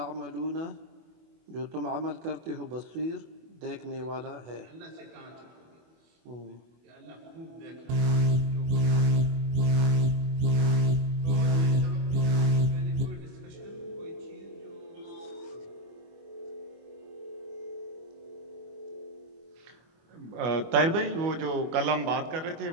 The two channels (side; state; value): left; late; 24 ms